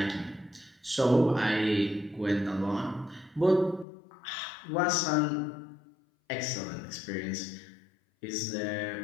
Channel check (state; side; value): drops out; right; at 3.9 s